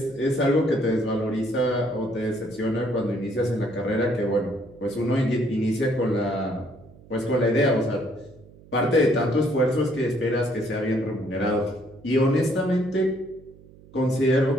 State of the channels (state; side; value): noise; right; hum, 23 dB below the sound